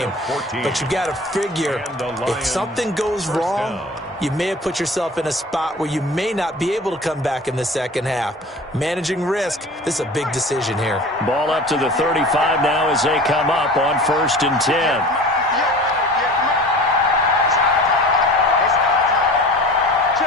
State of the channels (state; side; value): normal; both; correlation 0.40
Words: But you've got to figure if something goes wrong, you may have put yourself in a spot where you may not be able to come back in the second half. Managing risk, this is a big decision here. Ball up to the 35 now as they come up on 1st and 10.